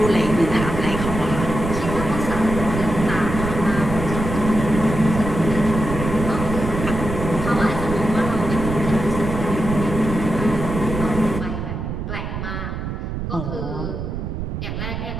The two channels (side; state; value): right; noise; rumble, 5 dB below the sound